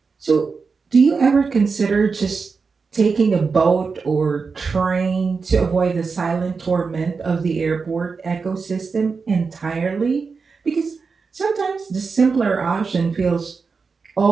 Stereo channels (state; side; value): quieter; left; 4.9 dB